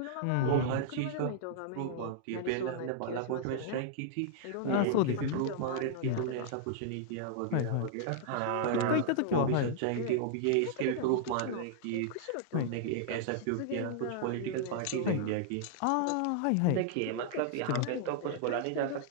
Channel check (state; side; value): different; both; correlation -0.01